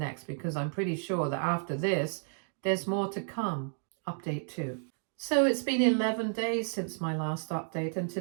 because I'm pretty sure that after this, there's more to come. Update 2. So it's been 11 days since my last update, and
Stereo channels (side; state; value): left; silent; 57 dB below the other